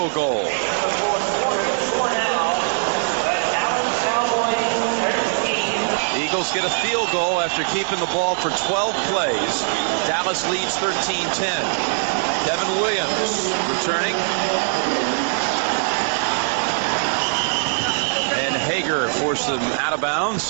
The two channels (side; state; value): left; silent; digital silence